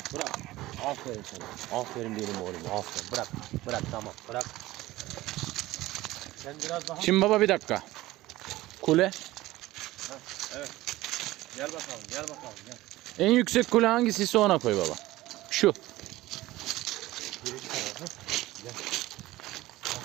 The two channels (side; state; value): left; quieter; 17.4 dB